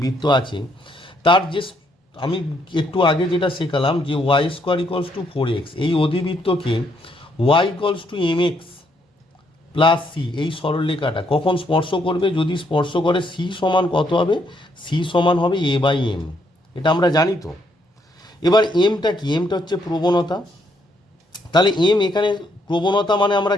আছে, তার যে আমি একটু আগে যেটা শেখালাম যে Y square equals to 4x, এই অধিবৃত্তকে Y equals to M x plus C এই সরলরেখাটা কখন স্পর্শ করবে? যদি স্পর্শ করে সি সমান কত হবে? সি সমান হবে এ বাই এম, এটা আমরা জানি তো। এবার এমটা কি? এমটা হচ্ছে প্রবণতা। তাহলে এম এখানে প্রবণতা মানে আমরা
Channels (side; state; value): both; normal; correlation 0.72